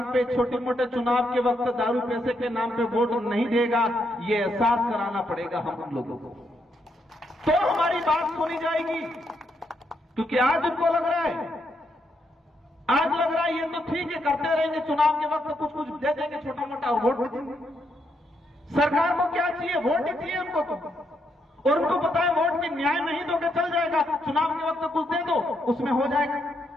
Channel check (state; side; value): normal; both; correlation 0.78